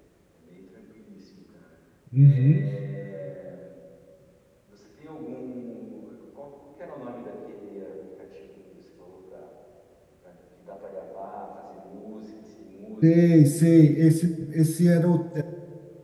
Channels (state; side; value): identical; both; correlation 1.00